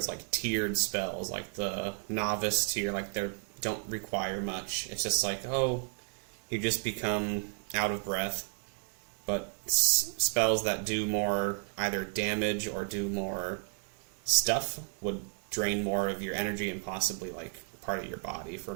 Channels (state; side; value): silent; left; 56 dB below the other